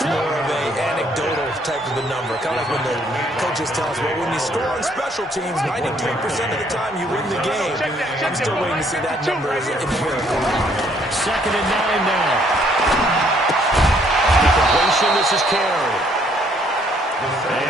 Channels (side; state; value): both; normal; correlation 0.66